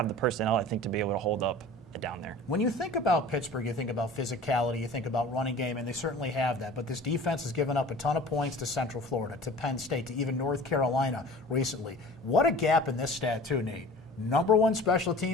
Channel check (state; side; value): normal; both; correlation 0.42